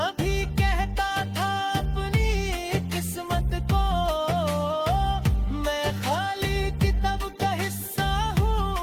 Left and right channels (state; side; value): identical; both; correlation 1.00